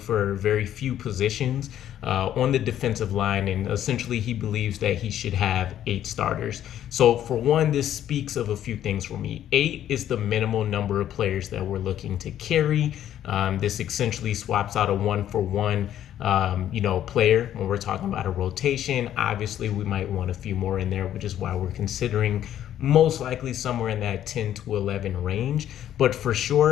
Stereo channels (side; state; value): right; quieter; 11.2 dB